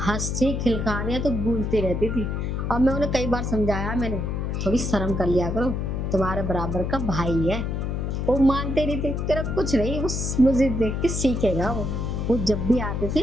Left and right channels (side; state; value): left; noise; hum, 2 dB below the sound